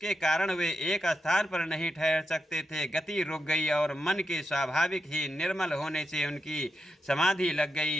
कारण वे एक स्थान पर नहीं ठहर सकते थे, गति रुक गई और मन के स्वाभाविक ही निर्मल होने से उनकी समाधि लग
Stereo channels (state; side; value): normal; both; correlation 0.85